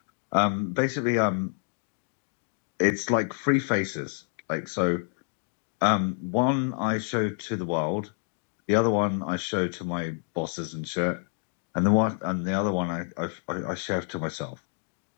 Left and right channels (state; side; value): silent; right; 58 dB below the other